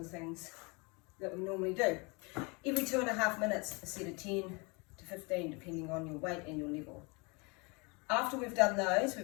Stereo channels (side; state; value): right; quieter; 29.4 dB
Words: things that we normally do. Every 2.5 minutes, a set of 10 to 15, depending on your weight and your level. After we've done those,